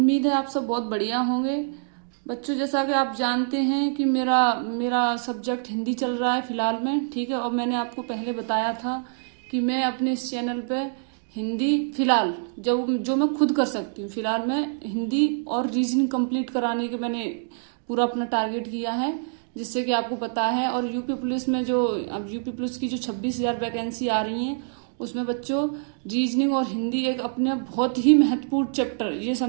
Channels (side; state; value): left; silent; digital silence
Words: है आप सब बहुत बढ़िया होंगे। बच्चों, जैसा कि आप जानते हैं कि मेरा मेरा सब्जेक्ट हिंदी चल रहा है फिलहाल में, ठीक है। और मैंने आपको पहले बताया था कि मैं अपने इस चैनल पे हिंदी फिलहाल जो मैं खुद कर सकती हूँ, फिलहाल मैं हिंदी और रीजनिंग कंप्लीट कराने के मैंने पूरा अपना टारगेट किया है, जिससे कि आपको पता है। और यूपी पुलिस में अब यूपी पुलिस की जो 26,000 वैकेंसी आ रही हैं, उसमें बच्चों रीजनिंग और हिंदी एक अपने बहुत ही महत्वपूर्ण चैप्टर, ये